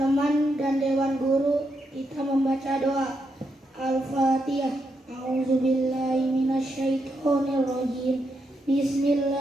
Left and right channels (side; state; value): both; normal; correlation 0.82